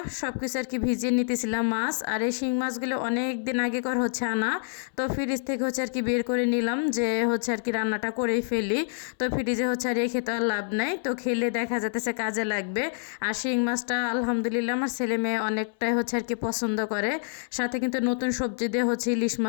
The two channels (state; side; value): silent; right; 60 dB below the other